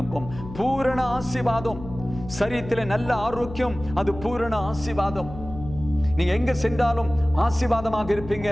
பூரண ஆசீர்வாதம். சரீரத்தில் நல்ல ஆரோக்கியம், அது பூரண ஆசீர்வாதம். நீங்க எங்க சென்றாலும் ஆசீர்வாதமாக இருப்பீங்க,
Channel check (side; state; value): left; noise; hum, 13 dB below the sound